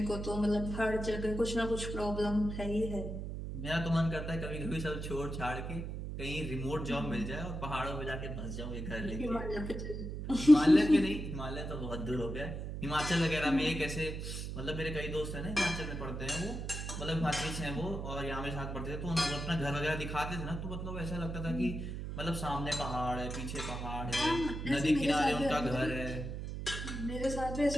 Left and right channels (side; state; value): right; noise; hum, 5 dB below the sound